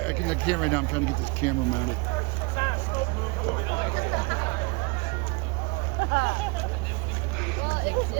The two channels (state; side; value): quieter; left; 27.9 dB